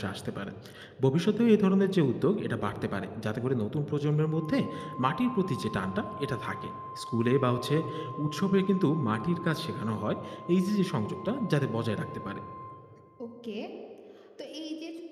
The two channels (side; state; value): both; identical; correlation 1.00